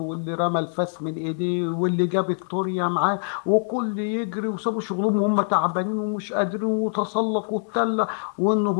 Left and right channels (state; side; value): silent; right; digital silence